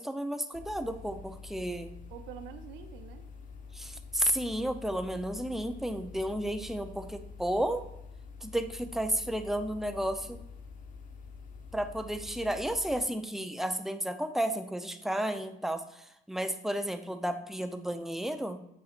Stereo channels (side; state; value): both; normal; correlation 0.79